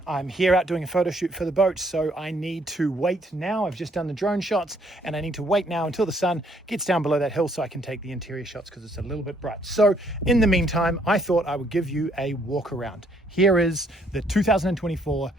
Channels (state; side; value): normal; both; correlation 0.67